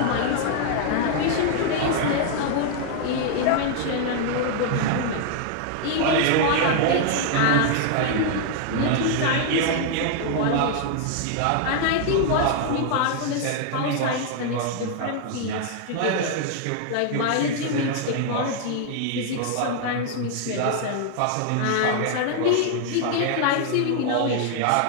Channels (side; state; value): both; different; correlation 0.00